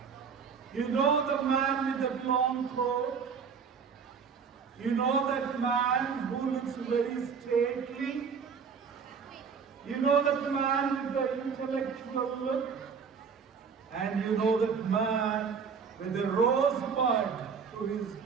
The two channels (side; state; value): left; quieter; 6.1 dB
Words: You know the man with the long coat. You know that man who looks very stately. You know that man with the intellectual look. And you know that man with the rosebud to his